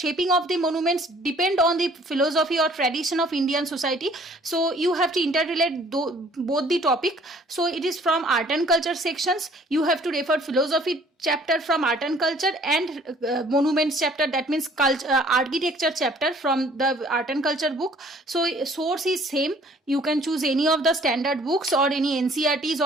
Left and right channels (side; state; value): both; normal; correlation 0.56